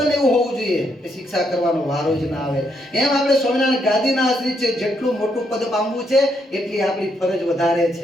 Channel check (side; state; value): both; normal; correlation 0.76